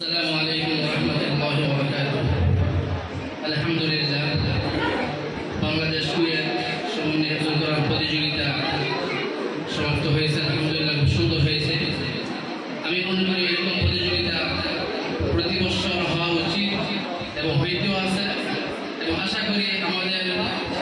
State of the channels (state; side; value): identical; both; correlation 1.00